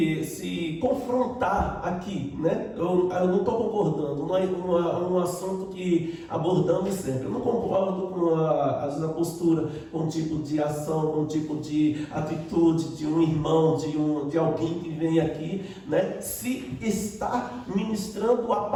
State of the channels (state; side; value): identical; both; correlation 1.00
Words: confrontar aqui, né? Eu não estou concordando, não é um assunto que abordamos sempre. Eu não concordo com às vezes a postura, com um tipo de ação, com um tipo de atitude de um irmão, de alguém que vem aqui, né? Se está ministrando a